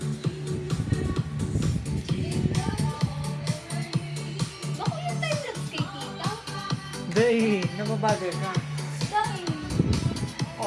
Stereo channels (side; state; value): both; identical; correlation 1.00